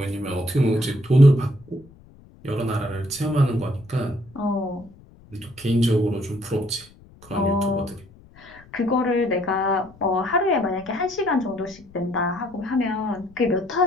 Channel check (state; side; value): noise; left; rumble, 24 dB below the sound